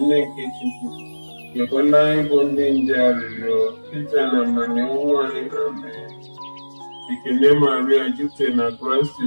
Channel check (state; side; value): inverted; both; correlation -1.00